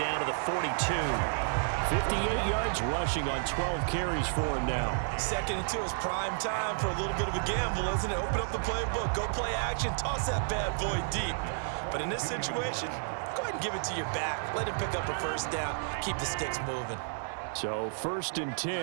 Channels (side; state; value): left; silent; digital silence